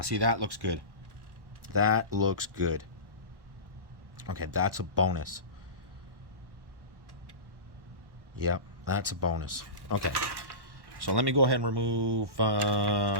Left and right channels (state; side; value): late; left; 1.1 ms